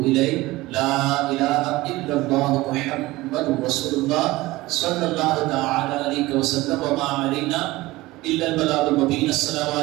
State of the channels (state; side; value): quieter; left; 19.3 dB